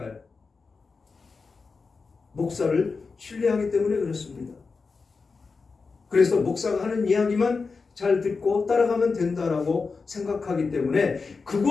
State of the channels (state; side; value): quieter; right; 4.6 dB